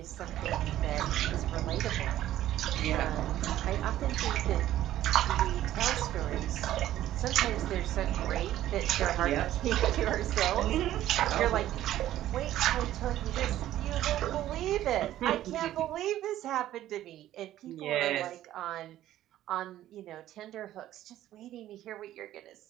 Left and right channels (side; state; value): left; quieter; 13.2 dB